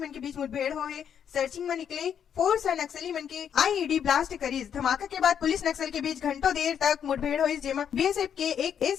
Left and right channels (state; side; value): quieter; right; 8.4 dB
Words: के बीच मुठभेड़ हो है। सर्चिंग में निकले फोर्स और नक्सली मन के आईईडी ब्लास्ट करीज। धमाका के बाद पुलिस नक्सल के बीच घंटों देर तक मुठभेड़ हुई, जेमा बीएसएफ के एक